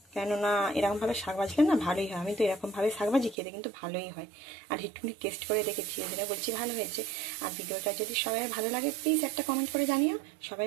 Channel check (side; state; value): left; drops out; at 3.4 s